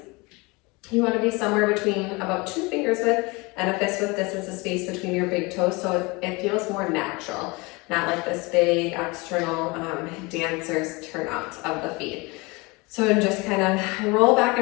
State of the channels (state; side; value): quieter; right; 25.8 dB